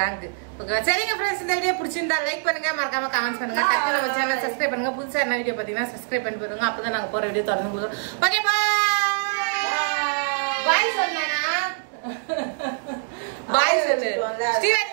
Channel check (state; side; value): silent; left; digital silence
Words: ஓகே சரிங்க ஃப்ரெண்ட்ஸ், இந்த வீடியோ பிடிச்சிருந்தா லைக் பண்ணுங்க, மறக்காம கமெண்ட் பண்ணுங்க, டக்கு நம்ம சேனல் சப்ஸ்கிரைப் பண்ணுங்க. புதுசா என்ன வீடியோ பாத்தீங்கன்னா சப்ஸ்கிரைப் பண்ணி போடுங்க. அப்பதான் நாங்க போற வீடியோ தொடர்ந்து போடுவோம். ஓகே பாய் சொன்னா பாய் சொல்லு